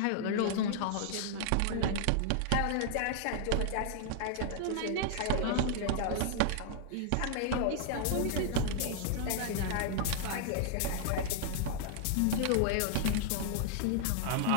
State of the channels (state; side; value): different; both; correlation -0.01